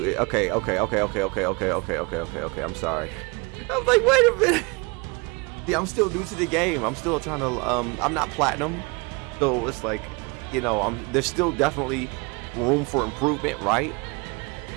I'm sorry. I was like, wait a minute. Yeah, I'm still new to the game. I'm still trying to I'm not platinum, so it's like, you know, there's still definitely room for improvement, right?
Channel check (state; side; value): quieter; left; 28.9 dB